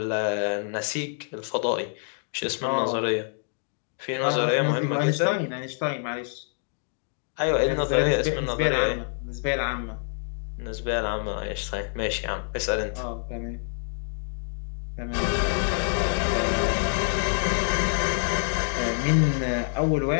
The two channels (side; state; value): right; silent; 60 dB below the other